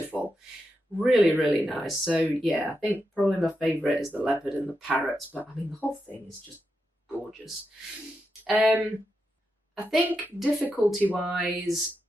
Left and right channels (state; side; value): normal; both; correlation 0.86